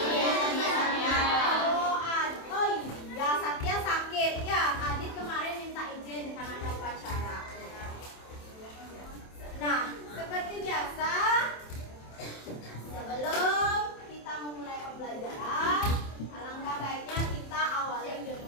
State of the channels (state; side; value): late; right; 27 ms